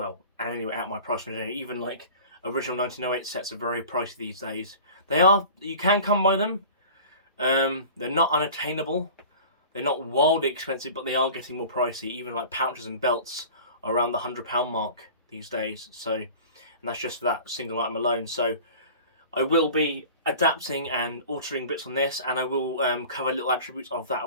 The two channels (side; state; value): both; inverted; correlation -0.40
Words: and anyway, at my price range, even like original 1908 sets are very pricey these days. You can come by them. They're not unattainable. They're not wildly expensive, but they are getting more pricey. Even like pouches and belts are around the £100 mark these days. So, and that's just for that single item alone. So I will be adapting and altering bits on this, and I will cover little attributes of that